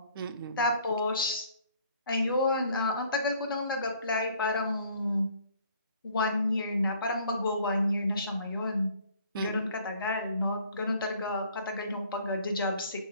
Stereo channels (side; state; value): both; inverted; correlation -0.57